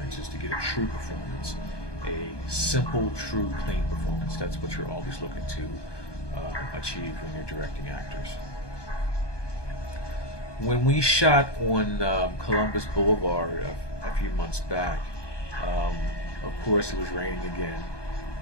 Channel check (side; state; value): right; late; 1.2 ms